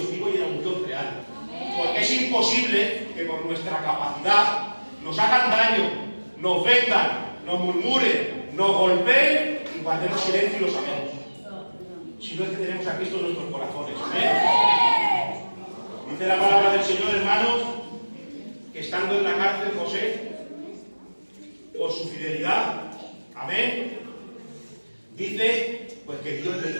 vivo y era un Dios real. Porque es imposible que por nuestra capacidad nos hagan daño, nos vendan, nos murmuren, nos golpeen y guardemos silencio y lo sabemos. Si no es que tenemos a Cristo en nuestros corazones. ¿Amén? Dice la palabra del Señor, hermanos, que estando en la cárcel José, por su fidelidad, amén, dice pues que Dios le hizo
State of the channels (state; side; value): inverted; both; correlation -1.00